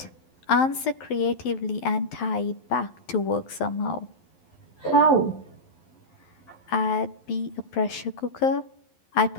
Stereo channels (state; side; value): late; right; 11 ms